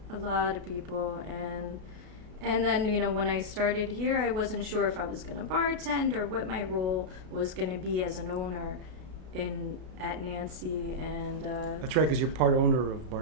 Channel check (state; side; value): late; left; 32 ms